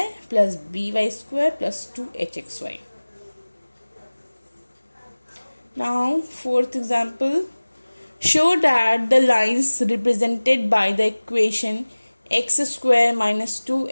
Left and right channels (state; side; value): inverted; both; correlation -1.00